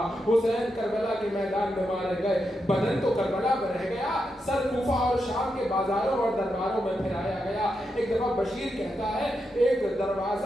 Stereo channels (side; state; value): both; normal; correlation 0.85